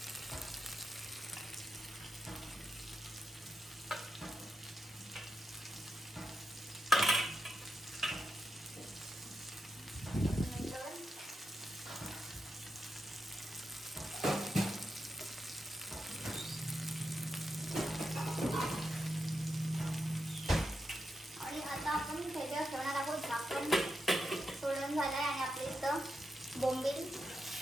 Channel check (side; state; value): both; normal; correlation 0.87